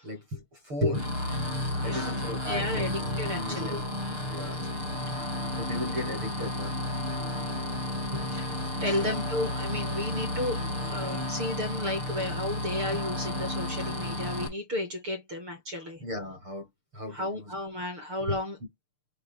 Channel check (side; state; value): left; late; 6.7 ms